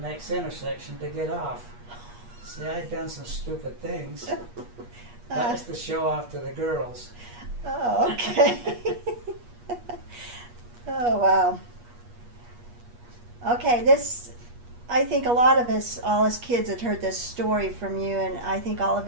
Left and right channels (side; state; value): left; late; 8.4 ms